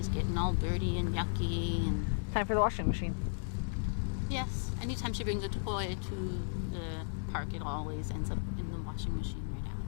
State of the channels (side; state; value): right; silent; 55 dB below the other